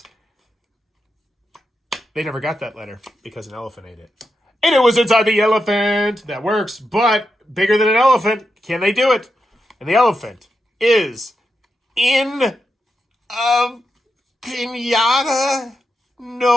They never got that letter because an elephant ate it. And it was inside the elephant. That works, but bigger than an elephant. Can they do it? And the elephant is in a pinata.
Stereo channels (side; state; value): both; normal; correlation 0.87